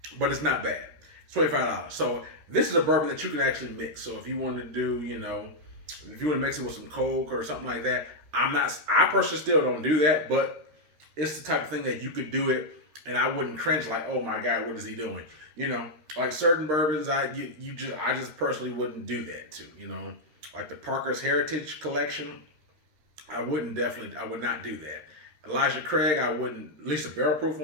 but it's not bad. It's $25. So this is a bourbon that you can actually mix. So if you want to do, if you want to mix it with some Coke or something like that, I personally still don't do that, but it's the type of thing that you could do it and I wouldn't cringe like, oh my God, what is he doing? Like certain bourbons, I just personally wouldn't do that too. Like the Parker's Heritage Collection, I would not do that. Elijah Craig, I wouldn't, at least a barrel proof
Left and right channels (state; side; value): late; left; 13 ms